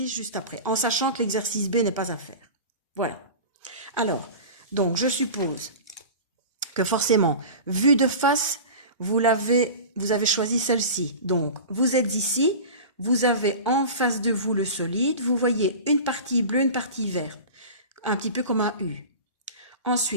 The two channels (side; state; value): both; inverted; correlation -0.33